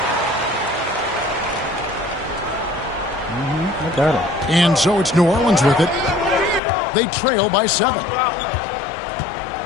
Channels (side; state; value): right; drops out; at 6.6 s